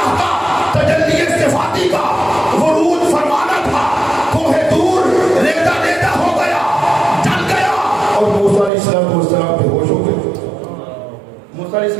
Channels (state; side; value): drops out; left; at 8.7 s